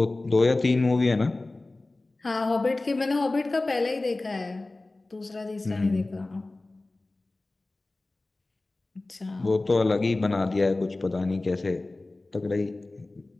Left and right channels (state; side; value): quieter; right; 3.0 dB